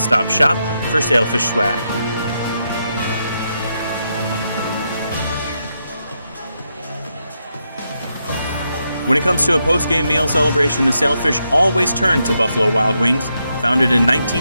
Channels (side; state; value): both; inverted; correlation -0.82